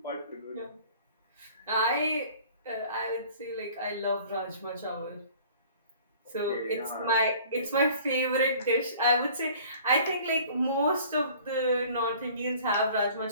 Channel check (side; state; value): both; inverted; correlation -0.49